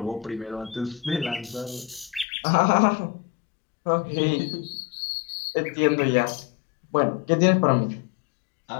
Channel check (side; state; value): right; drops out; at 2.2 s